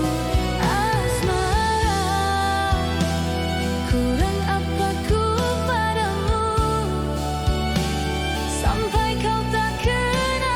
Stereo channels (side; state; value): both; identical; correlation 1.00